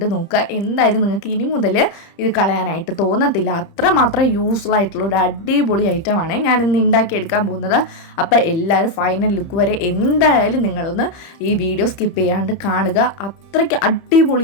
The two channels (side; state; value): right; late; 30 ms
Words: നോക്കുക. എന്തായാലും നിങ്ങൾക്ക് ഇനി മുതൽ ഇത് കളയാനായിട്ട് തോന്നത്തില്ല. അത്രമാത്രം യൂസ്ഫുൾ ആയിട്ടുള്ള ഒരു അടിപൊളി ഐറ്റമാണ് ഞാനിന്ന് ഉണ്ടാക്കിയെടുക്കാൻ പോകുന്നത്. അപ്പോൾ എല്ലാവരും ഫൈനൽ ലുക്ക് വരെ എന്തായാലും നിങ്ങളൊന്ന് ഈ വീഡിയോ സ്കിപ്പ് ചെയ്യാണ്ട് കാണുക. അത്രയ്ക്ക്